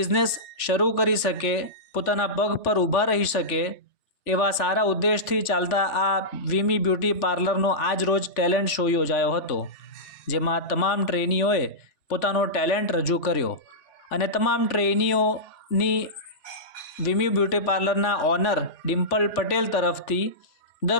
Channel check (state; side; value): late; right; 3.4 ms